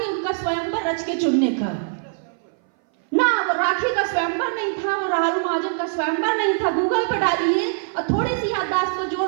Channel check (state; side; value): silent; left; 60 dB below the other